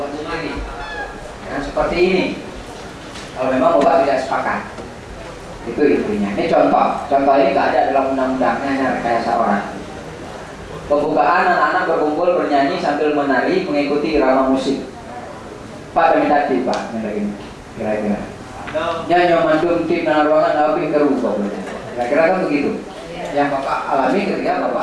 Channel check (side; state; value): both; identical; correlation 1.00